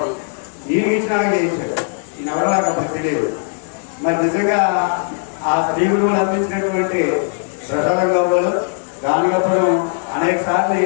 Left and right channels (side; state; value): right; silent; 67 dB below the other